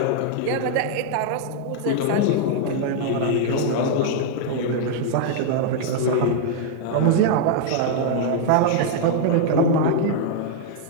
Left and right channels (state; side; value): different; both; correlation -0.01